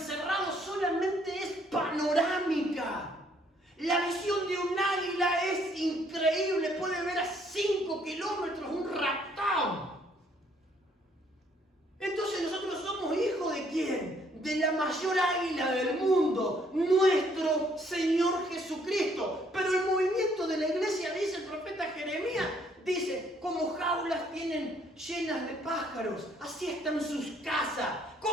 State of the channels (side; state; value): both; normal; correlation 0.66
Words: solamente es panorámica. La visión de un águila es increíble. Puede ver a 5 kilómetros un raptón. Entonces nosotros somos hijos ¿de quién? De la mayor águila del mundo, nuestro Señor Jesucristo. Pero el movimiento de la iglesia, dice el profeta Jeremías, dice, como jaulas tienen llenas de pájaros, así están sus casas.